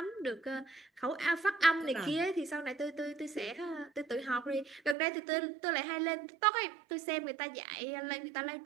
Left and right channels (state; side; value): drops out; left; at 5.0 s